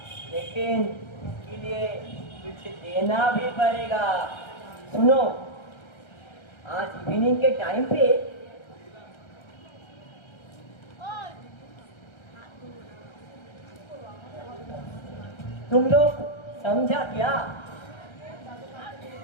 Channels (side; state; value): right; late; 1.3 ms